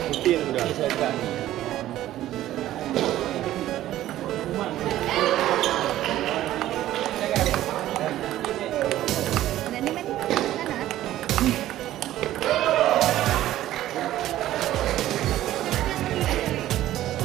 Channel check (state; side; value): quieter; left; 13.8 dB